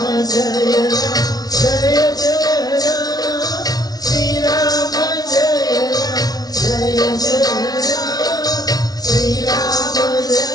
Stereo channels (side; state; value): right; late; 0.19 ms